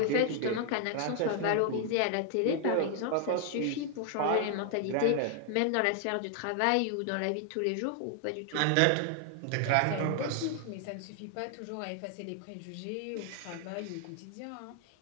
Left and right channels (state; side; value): different; both; correlation 0.00